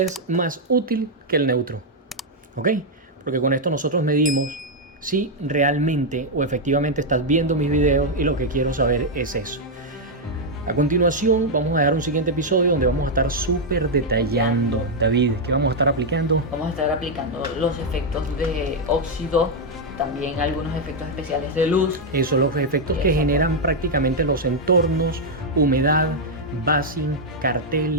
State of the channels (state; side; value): normal; both; correlation -0.01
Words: más útil que el neutro, ¿ok? Porque con esto nosotros medimos si realmente o efectivamente estás viendo mis videos, y lo que quiero saber es eso. A continuación vamos a dar un siguiente episodio donde vamos a estar súper detallando. David, ¿qué vamos a estar aplicando? Vamos a estar aplicando los efectos de óxido, también algunos efectos especiales de luz. Eso, los efectos que generan prácticamente los entornos, humedad, basing,